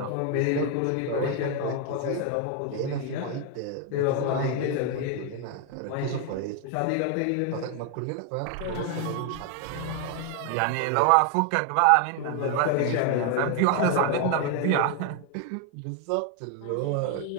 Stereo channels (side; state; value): both; different; correlation 0.00